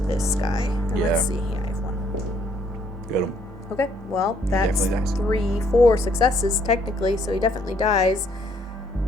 this guy. And Yeah. let's see. Yeah, I have 1. Got him. Okay, well, that's Definitely dies. 3, 4 successes technically, so he definitely dies.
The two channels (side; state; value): both; normal; correlation 0.67